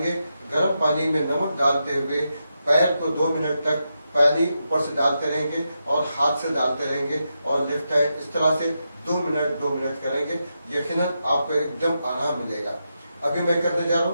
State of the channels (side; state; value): both; inverted; correlation -0.86